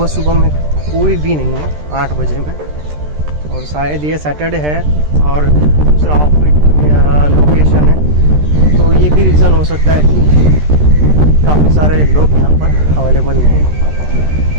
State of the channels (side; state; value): left; late; 13 ms